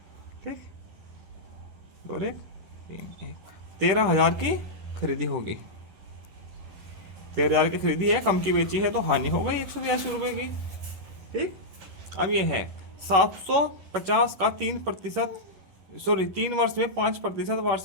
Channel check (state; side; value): late; left; 11 ms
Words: ठीक, 2 1 3 1, 13,000 की खरीदी होगी। 13,000 की खरीदी है, कम की बेची है, तो हानि हो गई 182 रुपये की। ठीक, अब ये है 750 का 3 वर्ष में 5%